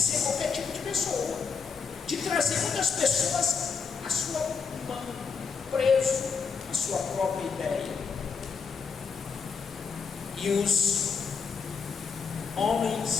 qualquer tipo de pessoa, de trazer muitas pessoas a sua mão, preso à sua própria ideia. E os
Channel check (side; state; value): right; quieter; 5.5 dB